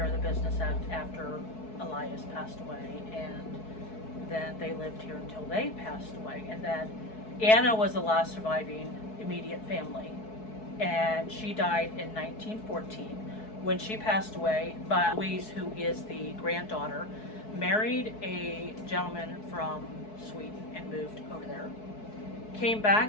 of the business after Elias passed away, and then they lived here until they passed away. And then Anna was the last surviving immediate family, and she died in 1914. When she passed away, but Louise, who is the granddaughter, married a gentleman from Sweden and moved over there. Came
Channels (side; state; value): right; late; 4.6 ms